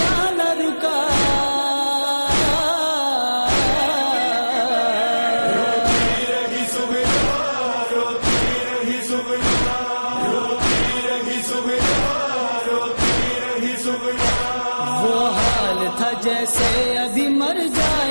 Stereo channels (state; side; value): inverted; both; correlation -1.00